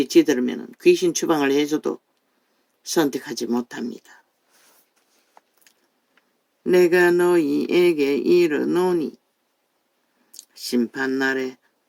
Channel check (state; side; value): identical; both; correlation 1.00